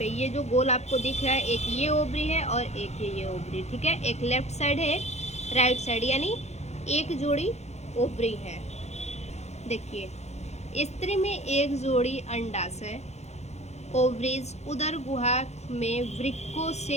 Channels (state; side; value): late; right; 0.32 ms